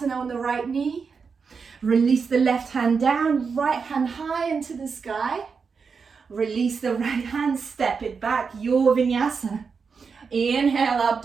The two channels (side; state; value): left; quieter; 5.5 dB